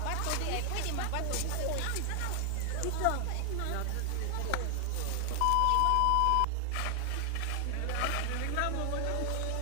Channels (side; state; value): both; different; correlation 0.00